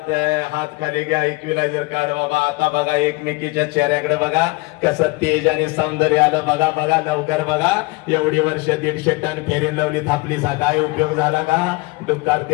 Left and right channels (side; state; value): right; quieter; 24.3 dB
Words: है. हात खाली घ्या, इक्विलायझर काढ बाबा. आता बघा एकमेकीच्या चेहऱ्याकडे बघा, कसं तेज आणि सौंदर्य आलं. बघा बघा, लवकर बघा. एवढी वर्ष 150 टन फेरीन लावली थापलीचा काय उपयोग झाला का? डुक्कार